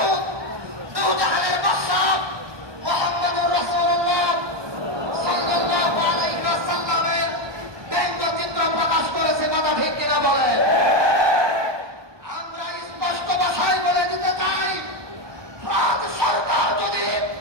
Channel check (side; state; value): left; late; 1.2 ms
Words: দুজাহানের বাদশাহ মুহাম্মদুর রাসূলুল্লাহ সাল্লাল্লাহু আলাইহি ওয়াসাল্লামের ব্যঙ্গচিত্র প্রকাশ করেছে। কথা ঠিক কিনা বলে? আমরা স্পষ্ট ভাষায় বলে দিতে চাই, ফ্রান্স সরকার যদি